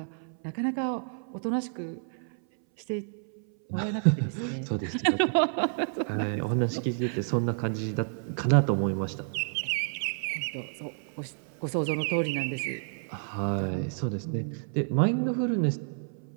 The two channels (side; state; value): left; silent; 58 dB below the other